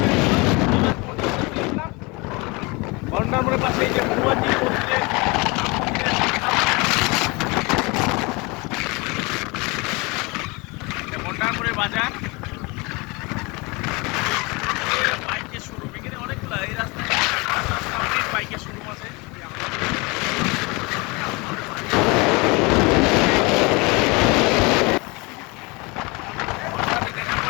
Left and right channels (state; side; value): quieter; right; 26.8 dB